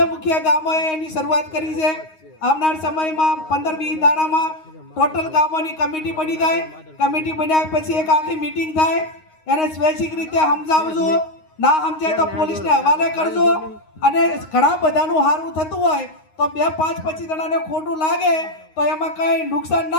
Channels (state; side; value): late; right; 9.6 ms